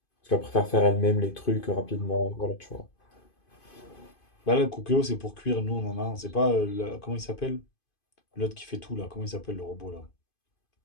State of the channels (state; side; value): late; right; 2.5 ms